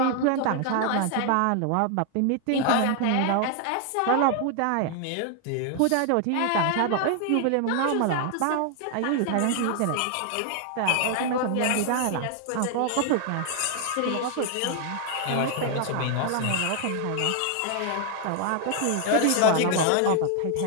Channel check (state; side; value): different; both; correlation 0.00